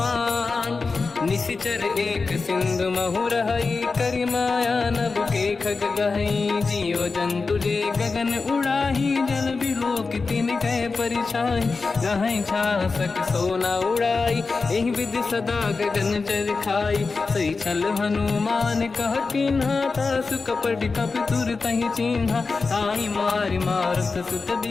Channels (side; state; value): right; quieter; 4.3 dB